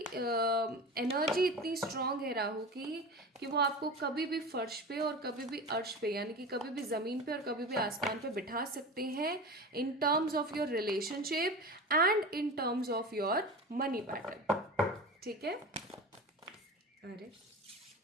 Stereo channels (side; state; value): both; normal; correlation 0.31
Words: एनर्जी इतनी स्ट्रांग है राहु की, कि वो आपको कभी भी फर्श पे और कभी भी अर्श पे, यानी कि कभी भी ज़मीन पे और कभी भी आसमान पे बिठा सकते हैं, in terms of your relationship and in terms of your money pattern, ठीक है। अरे